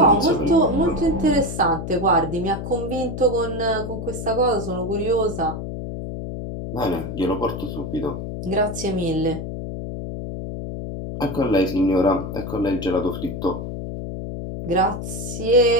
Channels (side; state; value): left; noise; hum, 6 dB below the sound